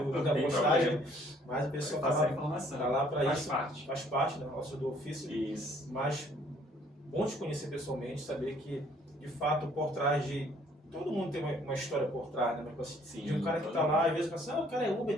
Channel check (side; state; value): both; normal; correlation 0.61